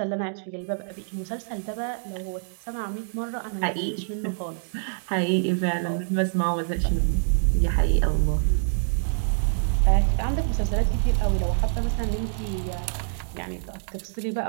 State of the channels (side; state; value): left; silent; digital silence